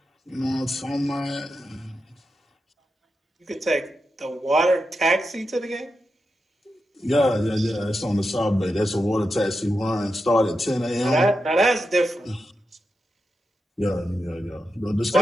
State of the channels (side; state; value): both; normal; correlation 0.88